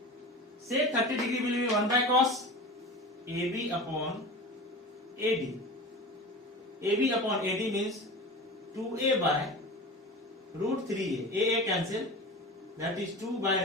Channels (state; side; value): normal; both; correlation 0.32